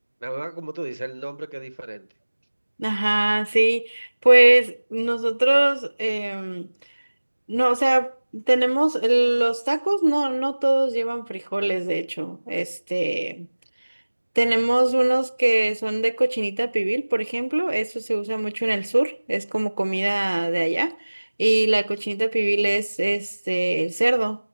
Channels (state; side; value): inverted; both; correlation -1.00